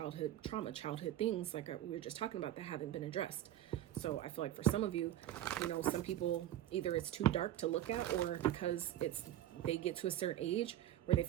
trauma, childhood things like we were just talking about that haven't been addressed. So I feel like for some of you, you know, some people, either it's too dark to look at, or because they get to a certain age where they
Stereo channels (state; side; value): quieter; left; 12.8 dB